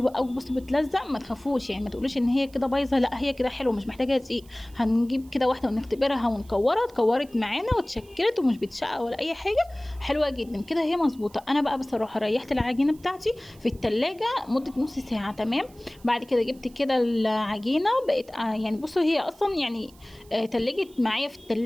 قوي. بصوا بتلزق، ما تخافوش يعني، ما تقولوش ان هي كده بايظه، لا هي كده حلوه مش محتاجه دقيق. هنجيب كده واحده ونختبرها ونكورها، اتكورت معانا واتشكلت ومش بتشقق ولا اي حاجه، حلوه جدا كده هي مظبوطه. انا بقى بصراحه ريحت العجينه بتاعتي في التلاجة مده نص ساعه. تمام، بعد كده جبت كده العجينه بقت يعني بصوا هي اصلا يعني تلجت معايا في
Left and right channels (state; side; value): noise; right; hiss, 27 dB below the sound